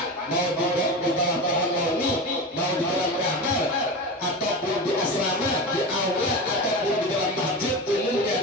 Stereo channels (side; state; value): both; normal; correlation 0.25